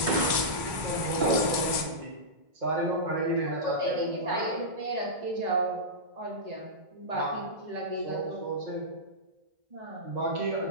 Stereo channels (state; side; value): late; left; 1.1 ms